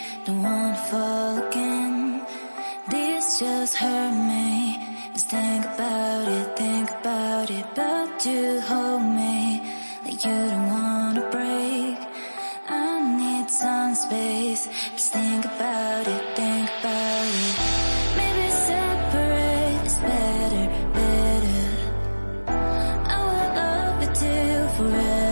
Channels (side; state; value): both; inverted; correlation -1.00